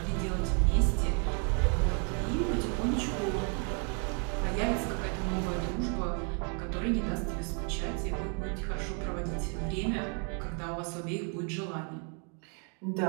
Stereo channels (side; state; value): left; quieter; 39.0 dB